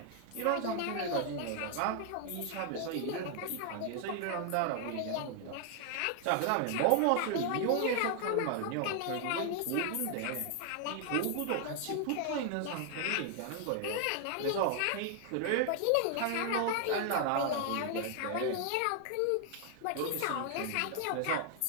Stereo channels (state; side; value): different; both; correlation 0.00